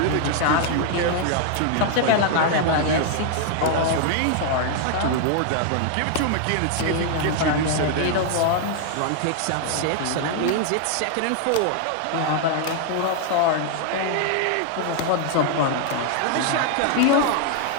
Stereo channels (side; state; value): both; different; correlation 0.00